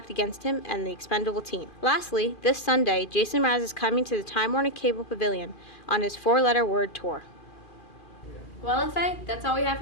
against him and the expendable team. Lastly, this Sunday, Jason Mraz is coming to the Time Warner Cable Pavilion on his 4-letter word tour. Well, FA, that's all we have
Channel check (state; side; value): late; right; 2.4 ms